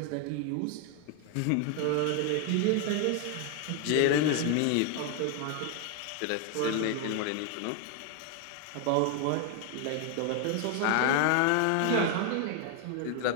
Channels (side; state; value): both; different; correlation 0.00